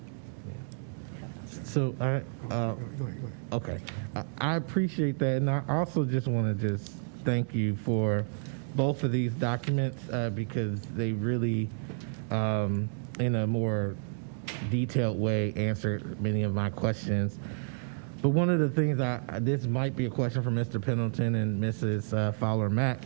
So okay, I appreciate that, and I also just want to just thank you for both of these documents because they really, in a more detailed way, answered many of my questions. But one of the things this might be a question for Mr. Pendleton and Mrs. Fowler-Mack,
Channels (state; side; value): silent; left; digital silence